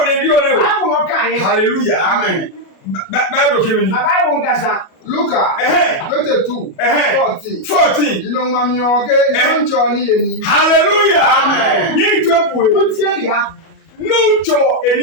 ne di o ne o. Bible no kan ye. Hallelujah. Amen. Bible kemini. Na Bible ngasa. Luka 22 14. Ino mami oge ncho ni eni. Hallelujah. Amen. Ni topuwe. O tie ya. Ncho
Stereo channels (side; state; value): right; late; 37 ms